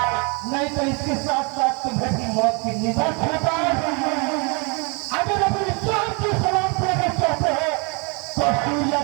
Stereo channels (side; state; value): left; quieter; 32.5 dB